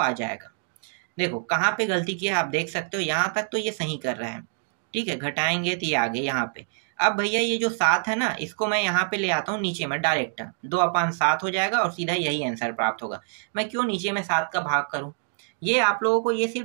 जाएगा। देखो कहाँ पे गलती की है आप देख सकते हो, यहाँ तक तो ये सही कर रहा है। ठीक है, घटाएंगे तो ये आगे यहाँ पे। अब भैया ये जो 7 है ना, इसको मैं यहाँ पे ले आता हूँ नीचे में, डायरेक्ट 2/7 हो जाएगा और सीधा यही आंसर प्राप्त होगा। मैं क्यों नीचे में 7 का भाग करूँ, ये आप लोगों को ये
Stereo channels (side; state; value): left; silent; digital silence